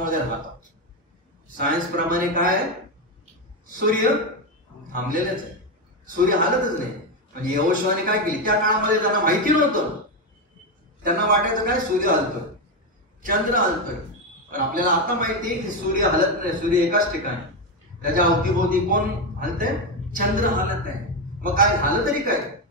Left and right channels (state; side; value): normal; both; correlation 0.10